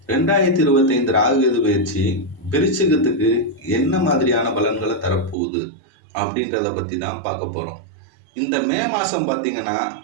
2025 ராகு கேது பயிற்சி விருச்சிகத்துக்கு என்ன மாதிரியான பலன்களை தரப்போகுது அப்படின்றத பற்றி தான் பார்க்க போகிறோம். இந்த மே மாதம் பார்த்திங்கன்னா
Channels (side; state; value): left; drops out; at 5.4 s